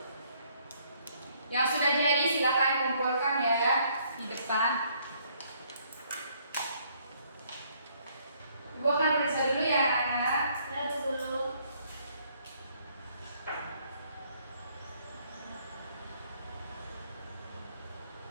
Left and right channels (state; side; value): inverted; both; correlation -0.66